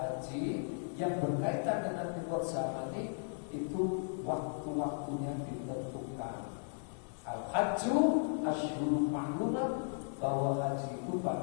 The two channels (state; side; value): silent; right; digital silence